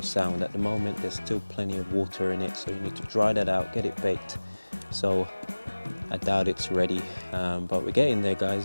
sound. At the moment there's still plenty of water in it, so you need to dry that out, get it baked. So I doubt it's ready, but we're getting there, guys.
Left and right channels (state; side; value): inverted; both; correlation -1.00